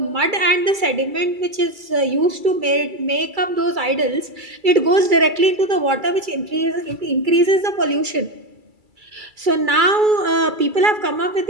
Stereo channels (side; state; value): left; late; 2.3 ms